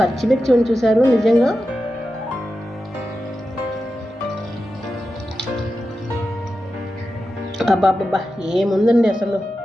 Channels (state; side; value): normal; both; correlation 0.91